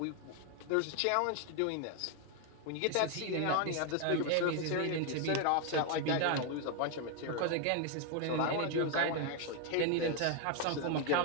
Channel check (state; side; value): different; both; correlation 0.01